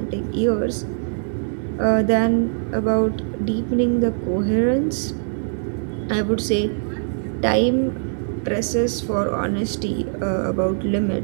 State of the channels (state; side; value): silent; left; digital silence